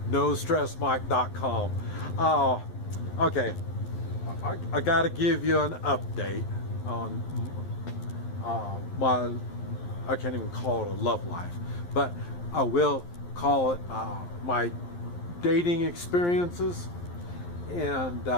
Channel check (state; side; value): late; right; 11 ms